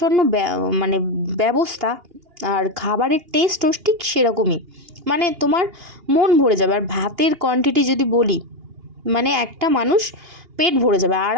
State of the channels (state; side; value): late; left; 2.8 ms